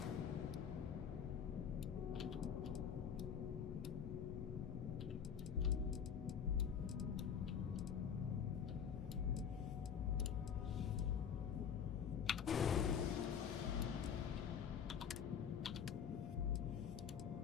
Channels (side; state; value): right; quieter; 7.6 dB